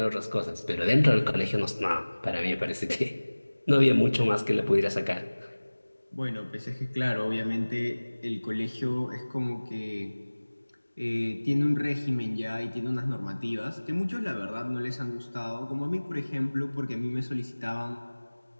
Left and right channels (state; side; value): inverted; both; correlation -1.00